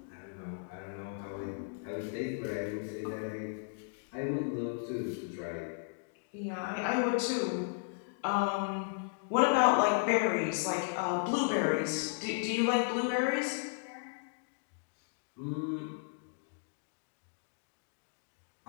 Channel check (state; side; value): silent; right; digital silence